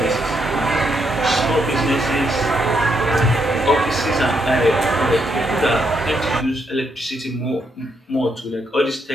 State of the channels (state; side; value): normal; both; correlation 0.77